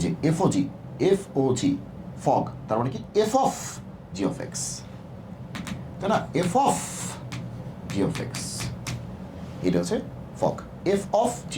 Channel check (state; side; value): identical; both; correlation 1.00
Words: যে এফ ও জি ফগ তার মানে কি f of g of x তাই না f of g of x এটা হচ্ছে fog f of g